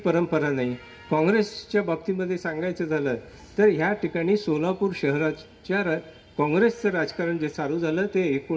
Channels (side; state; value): both; identical; correlation 1.00